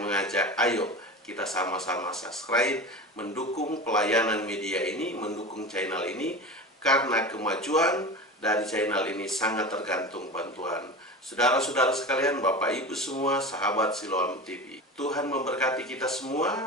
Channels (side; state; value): both; normal; correlation 0.30